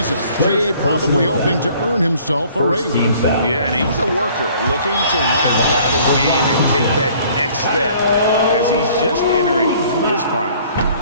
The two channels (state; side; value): inverted; both; correlation -0.56